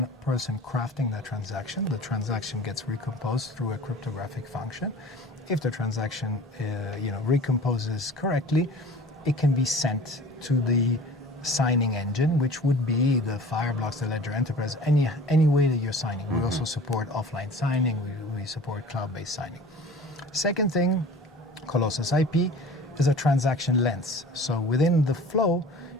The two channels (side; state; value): both; normal; correlation 0.42